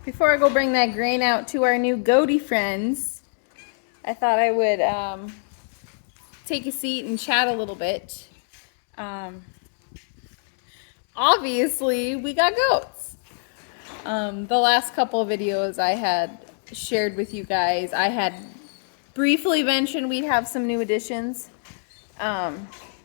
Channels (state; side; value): silent; right; digital silence